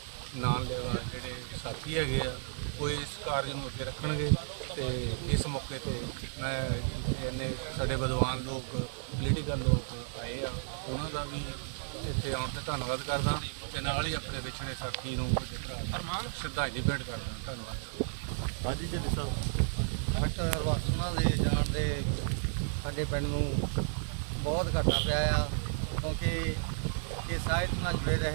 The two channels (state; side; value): silent; left; digital silence